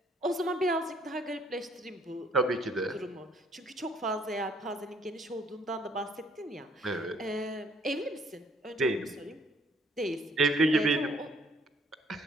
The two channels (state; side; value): normal; both; correlation 0.62